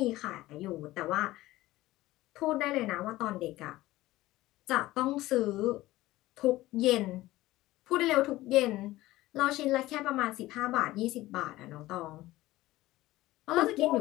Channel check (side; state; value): right; quieter; 17.2 dB